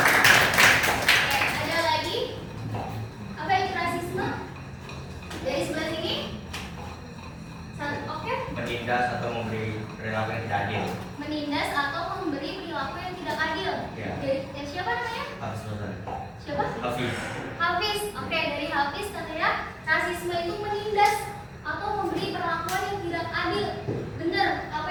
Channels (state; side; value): identical; both; correlation 1.00